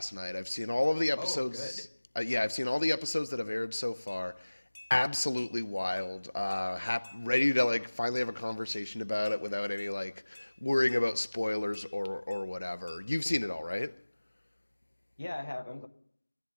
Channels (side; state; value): both; inverted; correlation -1.00